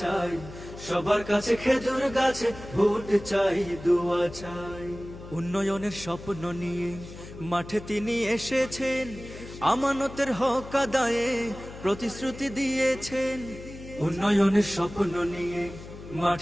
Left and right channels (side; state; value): left; noise; hum, 14 dB below the sound